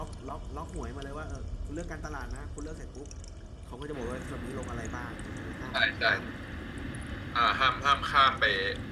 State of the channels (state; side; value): identical; both; correlation 1.00